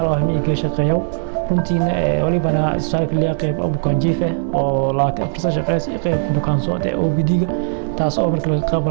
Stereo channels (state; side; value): silent; left; digital silence